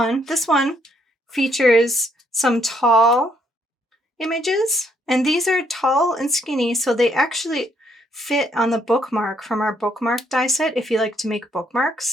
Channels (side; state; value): both; normal; correlation 0.70